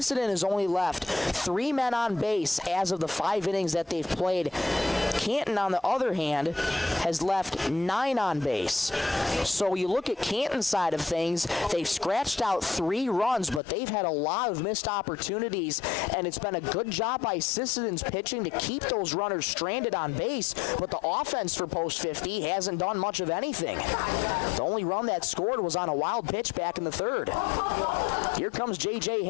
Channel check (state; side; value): drops out; right; at 13.6 s